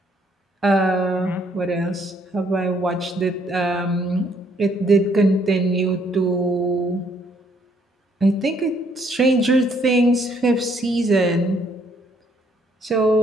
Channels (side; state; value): both; normal; correlation 0.67